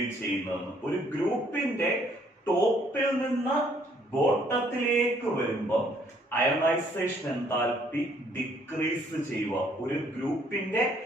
ചെയ്യുന്നതെന്ന്. ഒരു ഗ്രൂപ്പിന്റെ ടോപ്പിൽ നിന്ന് ബോട്ടത്തിലേക്ക് വരുമ്പോൾ അയണൈസേഷൻ എൻതാൽപ്പി ഡിക്രീസ് ചെയ്യുക. ഒരു ഗ്രൂപ്പിന്റെ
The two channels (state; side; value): normal; both; correlation 0.64